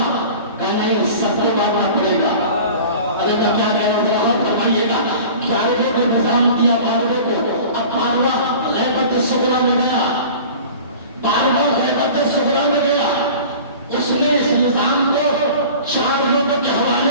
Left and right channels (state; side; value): inverted; both; correlation -0.41